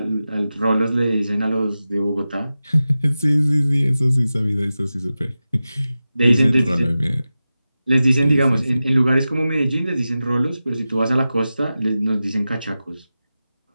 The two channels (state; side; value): inverted; both; correlation -0.94